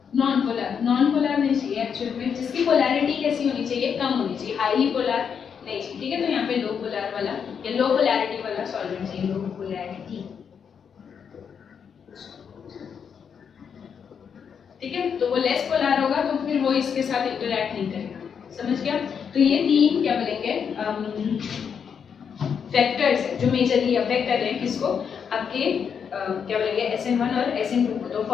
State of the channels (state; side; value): quieter; right; 7.0 dB